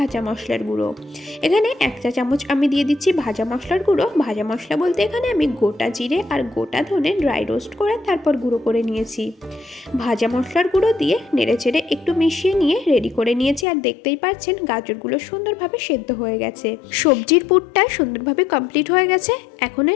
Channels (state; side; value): drops out; right; at 13.7 s